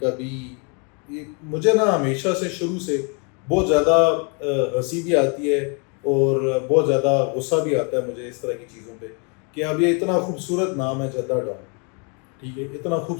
بھی مجھے نا ہمیشہ سے شروع سے بہت زیادہ ہنسی بھی آتی ہے اور بہت زیادہ غصہ بھی آتا ہے مجھے اس طرح کی چیزوں پہ کہ اب یہ اتنا خوبصورت نام ہے جدہ ٹاؤن، ٹھیک ہے، اتنا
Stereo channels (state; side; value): quieter; right; 36.0 dB